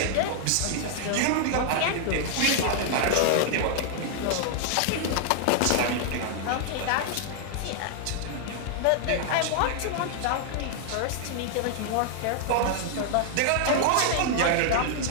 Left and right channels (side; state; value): both; different; correlation 0.00